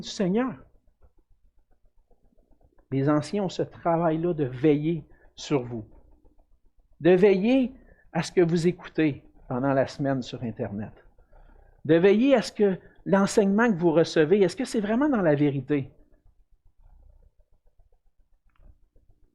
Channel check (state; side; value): identical; both; correlation 1.00